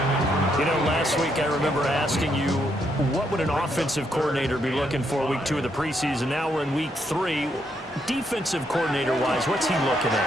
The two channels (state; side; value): normal; both; correlation 0.76